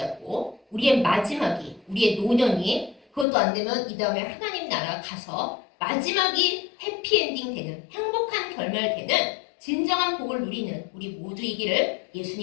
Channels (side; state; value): right; drops out; at 3.2 s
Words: 우리의 마지막이, 우리의 노년이 그것도 안 되면 이 다음에 하나님 나라 가서 마지막이 해피엔딩 되는 행복한 결말 되는 진정한 복을 누리는 우리 모두이기를